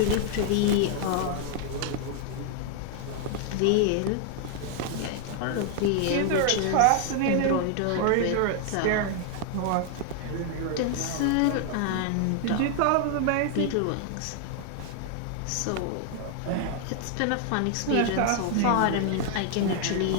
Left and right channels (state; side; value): different; both; correlation 0.00